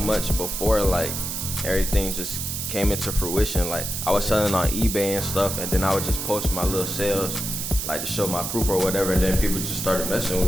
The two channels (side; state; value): right; noise; hiss, 4 dB below the sound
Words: before, like, everything just came into fruition. Like, I was selling on eBay and stuff, and then I would just post my little sales, like, to show my proof or whatever, and then people just started messing